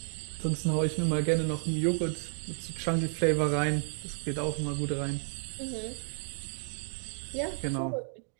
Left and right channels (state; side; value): silent; left; 56 dB below the other